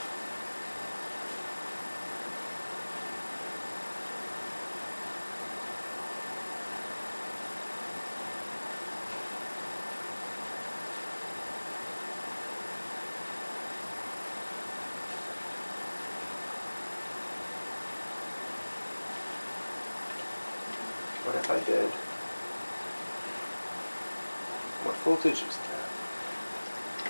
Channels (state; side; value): inverted; both; correlation -1.00